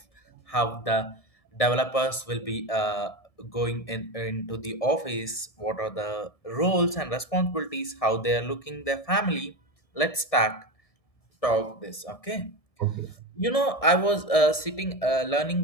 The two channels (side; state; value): right; late; 1.7 ms